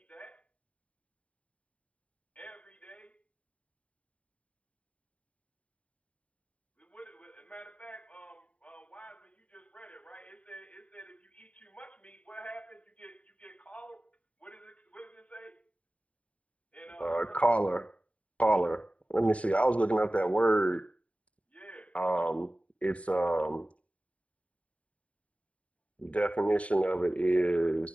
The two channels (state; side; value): late; right; 0.065 ms